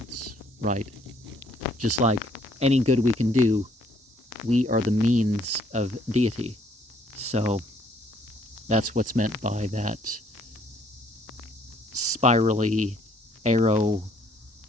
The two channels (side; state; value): both; normal; correlation 0.64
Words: right? Just like any good we can do, we are the means of deity. So that's what's meant by that spirally arrow